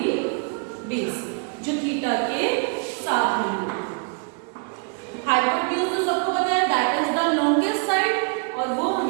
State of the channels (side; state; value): left; quieter; 40.0 dB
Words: बेस, जो थीटा के साथ में है। हाइपोटेन्यूज तो सबको पता है, that is the longest side, और वो